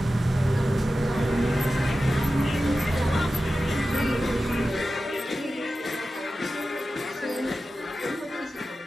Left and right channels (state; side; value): normal; both; correlation 0.93